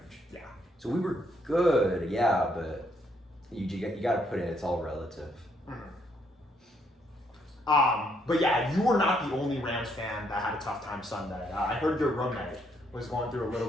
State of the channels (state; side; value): normal; both; correlation 0.72